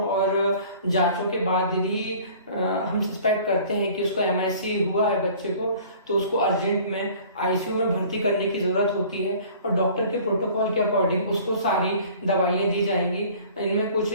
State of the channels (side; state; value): both; inverted; correlation -0.49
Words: और जांचों के बाद यदि हम सस्पेक्ट करते हैं कि उसको MIC हुआ है बच्चे को, तो उसको अर्जेंट में ICU में भर्ती करने की जरूरत होती है और डॉक्टर के प्रोटोकॉल के अकॉर्डिंग उसको सारी दवाइयां दी जाएंगी। इनमें कुछ